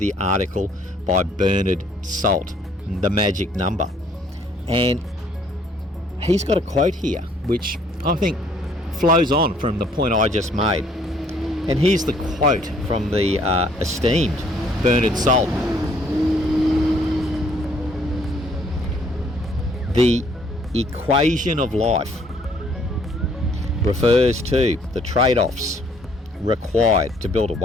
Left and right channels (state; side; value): normal; both; correlation 0.62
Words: article by Bernard Salt, The Magic Number. And he's got a quote here, which I think flows on from the point I just made. And here's the quote from the esteemed Bernard Salt. The equation of life refers to the trade-offs required to build a